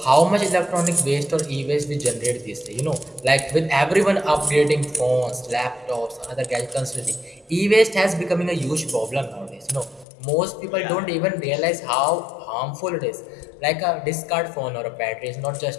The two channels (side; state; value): right; drops out; at 10.1 s